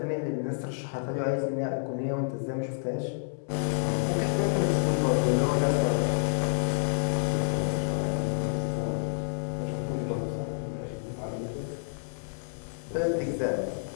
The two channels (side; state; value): right; silent; digital silence